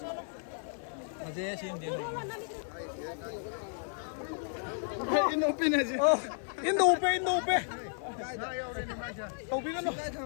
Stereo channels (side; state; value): right; silent; 56 dB below the other